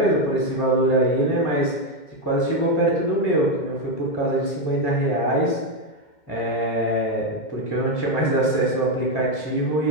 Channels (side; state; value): right; late; 2.2 ms